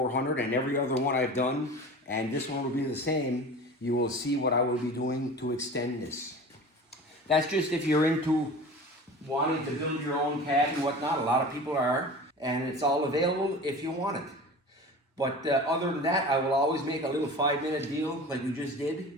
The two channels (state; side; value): normal; both; correlation 0.36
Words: and every other one I've done, and this one will be the same, you will see what I will be doing to extend this. That's just if you're into wanting to build your own cab and whatnot. A lot of people are, and it's all available if you want it. But other than that, I will always make a little 5-minute deal like you just